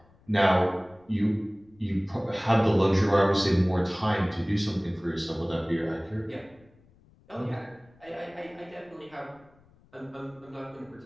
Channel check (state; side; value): noise; left; rumble, 29 dB below the sound